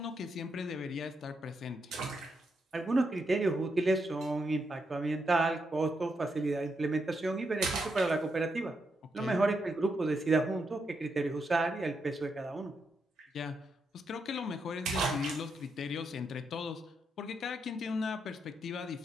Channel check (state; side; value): normal; both; correlation 0.82